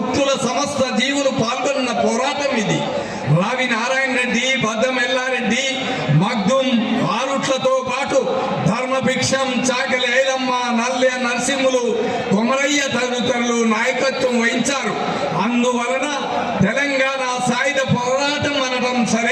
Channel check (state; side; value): identical; both; correlation 1.00